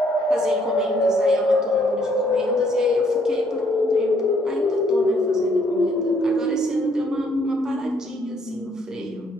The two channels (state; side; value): normal; both; correlation 0.67